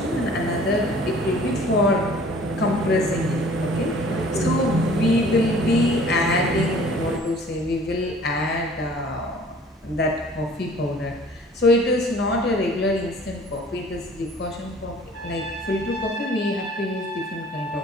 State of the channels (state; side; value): normal; both; correlation 0.51